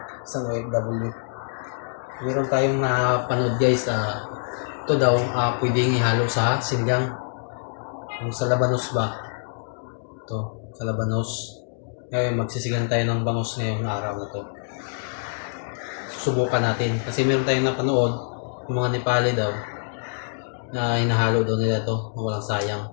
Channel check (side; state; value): right; silent; digital silence